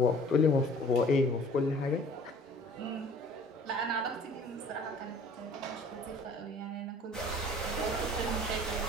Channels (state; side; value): normal; both; correlation 0.51